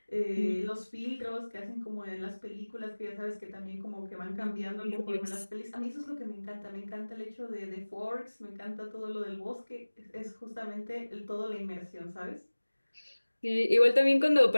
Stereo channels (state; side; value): inverted; both; correlation -1.00